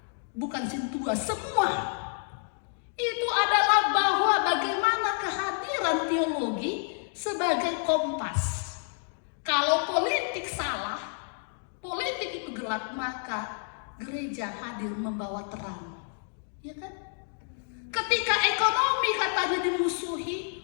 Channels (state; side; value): silent; right; 58 dB below the other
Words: bukan sintua, semua. Itu adalah bahwa bagaimana kehadiran teologi sebagai kompas. Kalau politik salah, politik itu gelap, maka gereja hadir membawa terang. Ya kan? Ketika ekonomi katanya